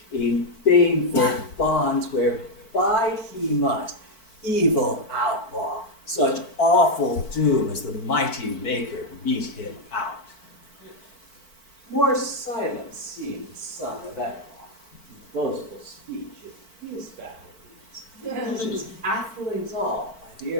in baneful bonds where bide he must, evil outlaw, such awful doom as the mighty Maker meet him out. More silent seemed the son of Beowulf, boastful speech of his battle deeds. His athelings all, by the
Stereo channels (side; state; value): right; late; 4.5 ms